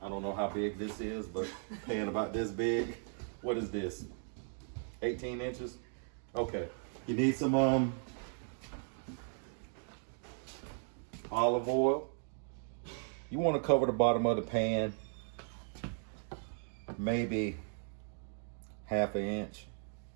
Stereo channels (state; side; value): silent; left; 53 dB below the other